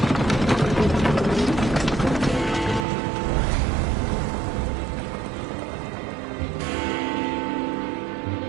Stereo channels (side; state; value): left; drops out; at 2.9 s